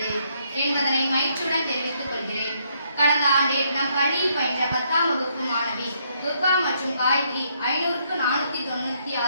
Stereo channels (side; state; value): both; inverted; correlation -0.72